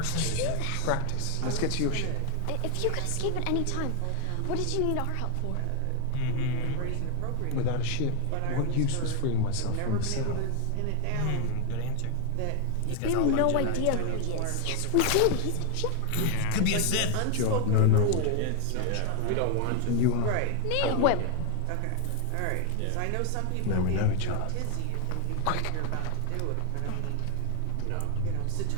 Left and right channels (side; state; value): both; different; correlation 0.00